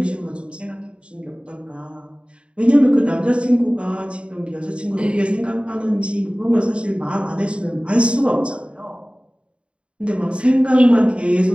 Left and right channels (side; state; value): left; late; 0.057 ms